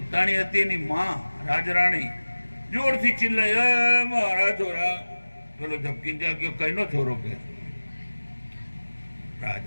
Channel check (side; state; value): both; inverted; correlation -1.00